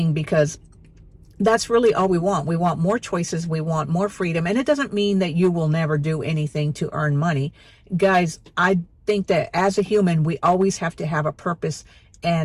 because that's really all we want. We want more choices. We want more freedom. And it doesn't mean that you will never do anything to earn money. Guys, I think that as a human, we always have to have a purpose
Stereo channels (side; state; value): both; identical; correlation 1.00